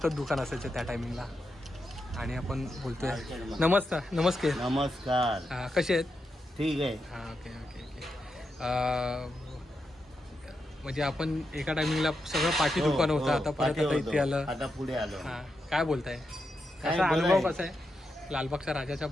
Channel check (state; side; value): normal; both; correlation 0.86